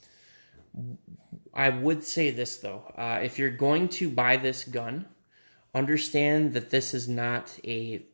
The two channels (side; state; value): both; inverted; correlation -1.00